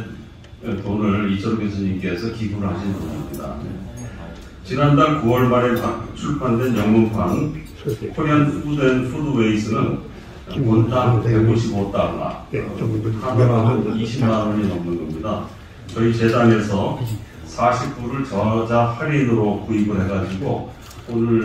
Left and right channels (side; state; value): both; identical; correlation 1.00